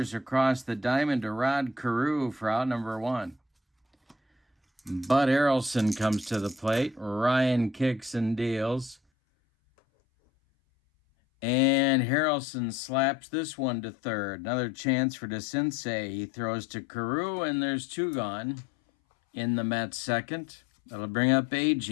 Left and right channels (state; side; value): drops out; right; at 9.0 s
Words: across the diamond to Rod Carew for out number 1. Bud Harrelson comes to the plate. Ryan kicks and deals. And Harrelson slaps this one to third. Another chance for DeCinces. He throws to Carew, and there's 2 gone in the Mets' second. That'll bring up